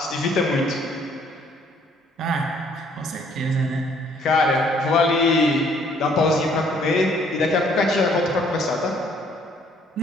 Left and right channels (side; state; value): both; normal; correlation 0.63